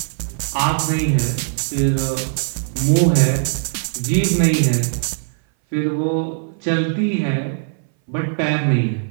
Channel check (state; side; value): silent; left; 60 dB below the other